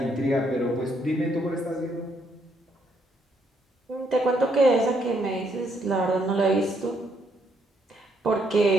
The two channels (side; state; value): both; normal; correlation 0.73